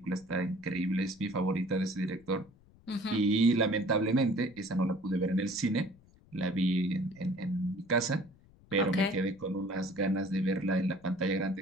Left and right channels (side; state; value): left; noise; rumble, 27 dB below the sound